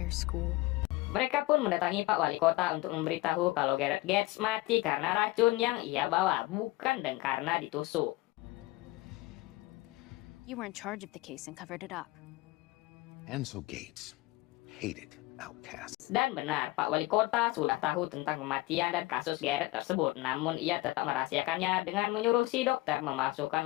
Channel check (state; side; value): quieter; right; 19.7 dB